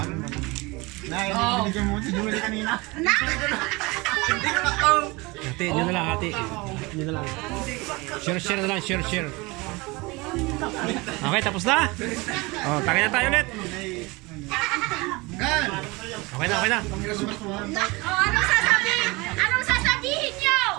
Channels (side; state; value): left; quieter; 24.4 dB